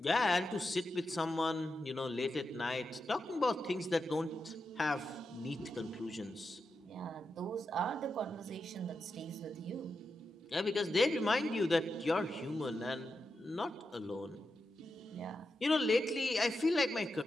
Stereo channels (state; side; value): normal; both; correlation 0.88